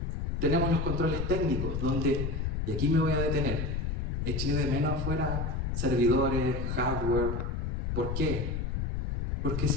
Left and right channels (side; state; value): left; noise; rumble, 1 dB below the sound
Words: Tenemos los controles técnicos, donde, y aquí me voy a detener, eché de menos afuera servidores, hardware. ¿Por qué? Porque